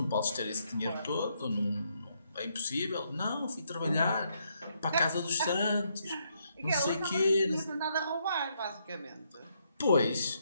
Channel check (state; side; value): inverted; both; correlation -0.75